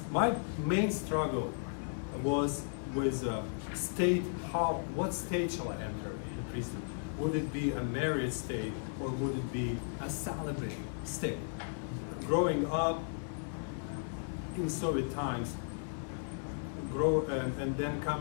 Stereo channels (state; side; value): silent; right; 54 dB below the other